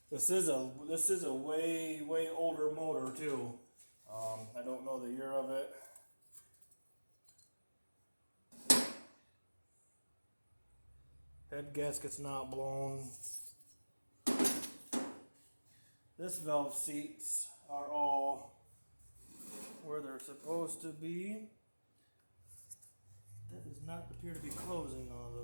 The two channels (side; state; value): both; inverted; correlation -1.00